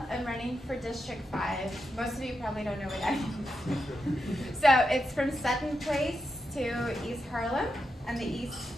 I'm running for District 5. Most of you probably don't know what that is. So it's from Sutton Place to East Harlem on the east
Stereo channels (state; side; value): normal; both; correlation 0.86